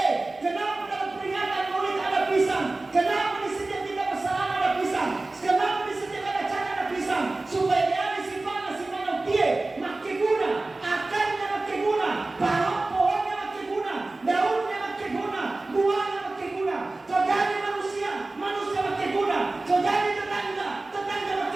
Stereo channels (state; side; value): quieter; left; 3.1 dB